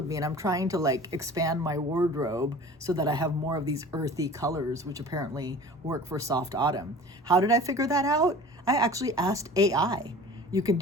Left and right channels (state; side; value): normal; both; correlation 0.42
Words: me, and I'm trying to like expand my wardrobe so that I have more of these earthy colors, which apparently work for soft autumn. How did I figure that out? I actually asked AI. You can